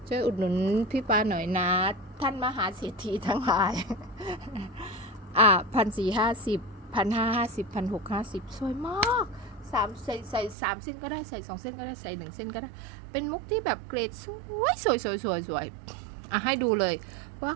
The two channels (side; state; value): left; drops out; at 10.6 s